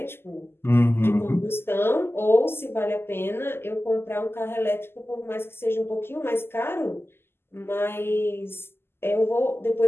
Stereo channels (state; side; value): late; right; 0.12 ms